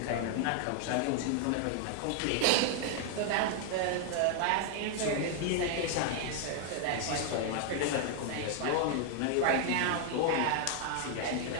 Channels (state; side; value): different; both; correlation 0.00